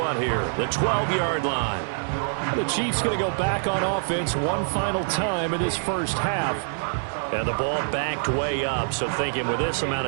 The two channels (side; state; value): left; silent; digital silence